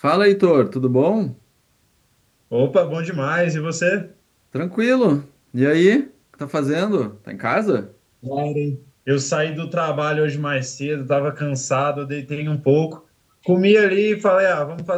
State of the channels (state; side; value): identical; both; correlation 1.00